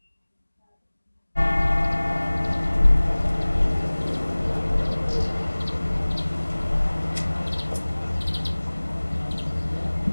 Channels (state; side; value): inverted; both; correlation -1.00